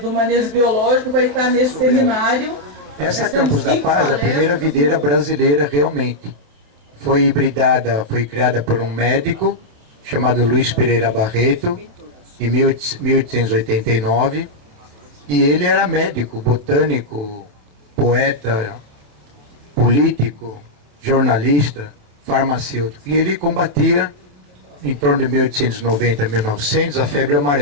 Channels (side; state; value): left; late; 28 ms